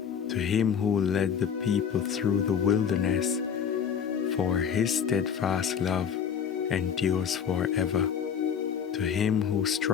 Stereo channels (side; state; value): right; quieter; 7.6 dB